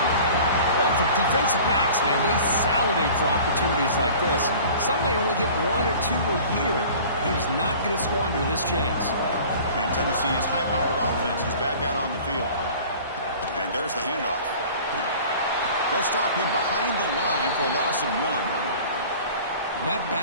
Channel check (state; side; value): inverted; both; correlation -0.44